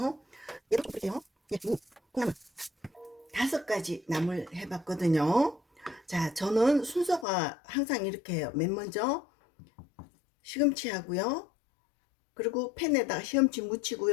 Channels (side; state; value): right; drops out; at 7.2 s